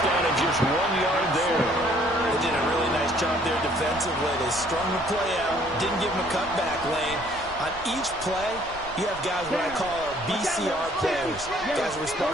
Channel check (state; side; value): noise; right; rumble, 18 dB below the sound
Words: down and just 1 yard there. They did a really nice job there defensively. They strung the play out, didn't give him a cutback lane. On each play, you have guys what I call our BCR players. Guys are